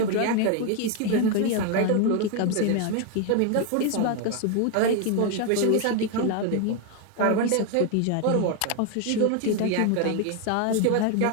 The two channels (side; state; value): both; different; correlation 0.01